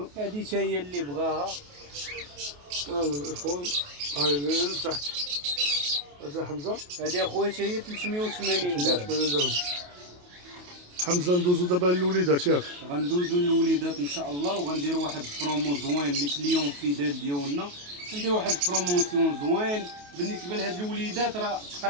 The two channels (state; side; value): late; left; 28 ms